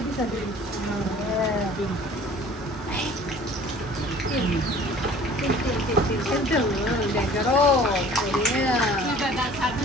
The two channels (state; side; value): normal; both; correlation 0.49